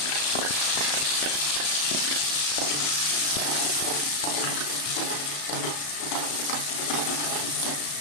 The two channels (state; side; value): late; right; 34 ms